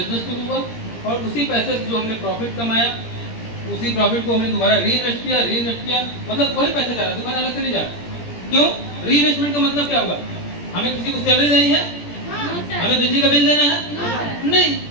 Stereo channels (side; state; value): right; late; 17 ms